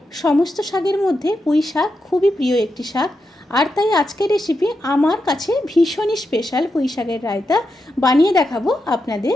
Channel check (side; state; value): both; normal; correlation 0.86